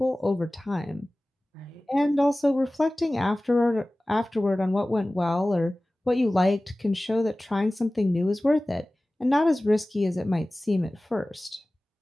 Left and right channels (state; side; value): normal; both; correlation 0.98